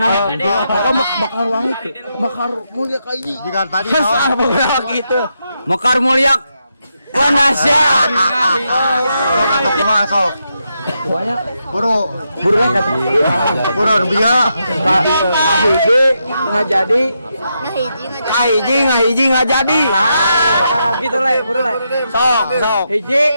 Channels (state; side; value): inverted; both; correlation -0.83